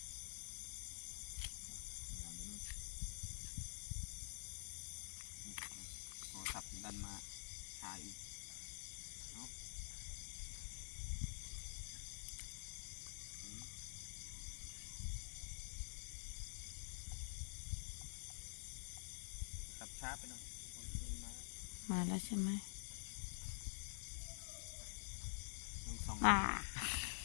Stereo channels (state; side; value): silent; right; digital silence